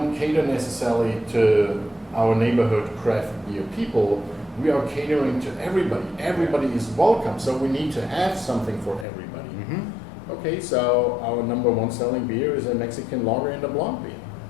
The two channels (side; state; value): right; drops out; at 9.1 s